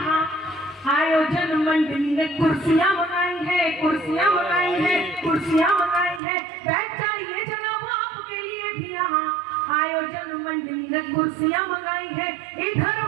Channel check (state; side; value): drops out; left; at 6.2 s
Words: आयोजन मंडली ने कुर्सियाँ मंगाई है, कुर्सियाँ मंगाई है, कुर्सियाँ मंगाई है। बैठ जाइए जनाब, आपके लिए भी यहाँ आयोजन मंडली ने कुर्सियाँ मंगाई है। इधर